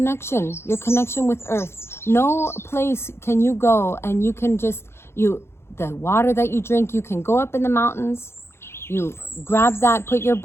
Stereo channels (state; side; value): late; right; 0.12 ms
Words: with Earth. No place can you go and you can just, the water that you drink, you can go up in the mountains, you grab that, put your